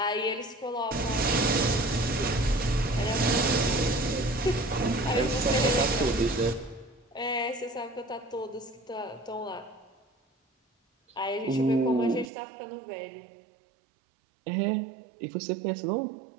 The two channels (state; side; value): drops out; left; at 12.3 s